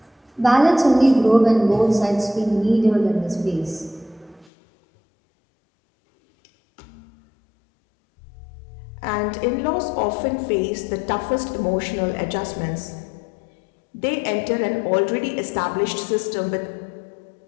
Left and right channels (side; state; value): right; drops out; at 4.5 s